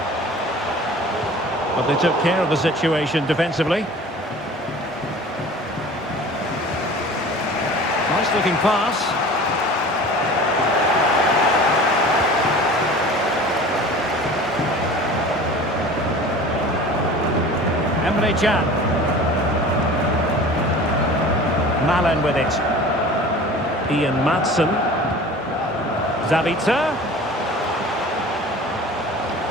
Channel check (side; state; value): both; normal; correlation 0.41